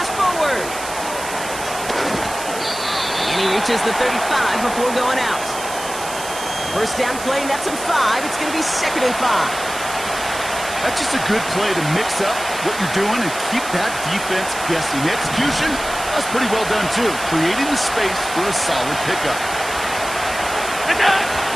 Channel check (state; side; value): noise; right; hiss, 10 dB below the sound